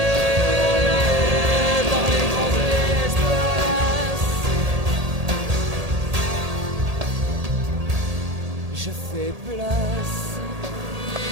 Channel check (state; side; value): late; left; 1.8 ms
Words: Je fais place.